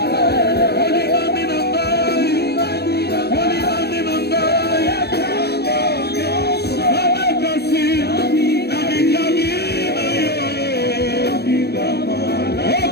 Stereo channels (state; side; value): late; right; 0.47 ms